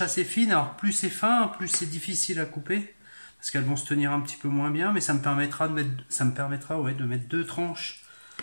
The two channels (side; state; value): both; inverted; correlation -1.00